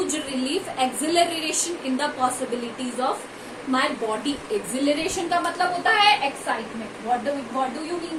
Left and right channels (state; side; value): identical; both; correlation 1.00